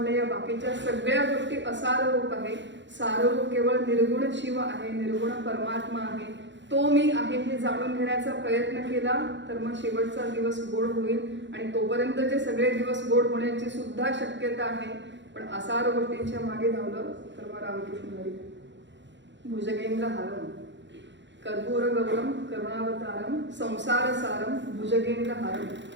या बाकीच्या सगळ्या गोष्टी असार रूप आहे. साररूप केवळ निर्गुण शिव आहे, निर्गुण परमात्मा आहे, तो मी आहे हे जाणून घेण्याचा प्रयत्न केला तर मग शेवटचा दिवस गोड होईल. आणि तोपर्यंतचे सगळे दिवस गोड होण्याची सुद्धा शक्यता आहे. पण असार गोष्टींच्या मागे धावलं तर मग रामकृष्ण हरी. भुजगेंद्र हारम, कर्पूर गौरम करुणावतारम, संसार सारम, भुजगेंद्र हारम.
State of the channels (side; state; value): left; late; 0.53 ms